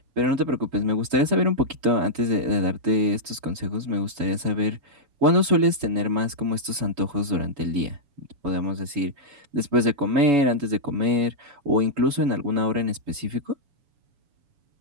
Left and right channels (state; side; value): late; left; 7.0 ms